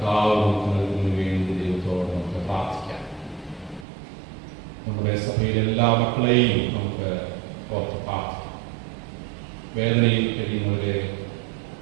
നമുക്ക് നൽകുന്നതിന് വേണ്ടി ദൈവത്തോട് നമുക്ക് പ്രാർത്ഥിക്കാം. നമ്മുടെ സഭയിലെ എല്ലാ മക്കളെയും നമുക്ക് ഓർത്ത് പ്രാർത്ഥിക്കാം. വേദനയിൽ കഴിയുന്നവരെ,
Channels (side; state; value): left; drops out; at 3.9 s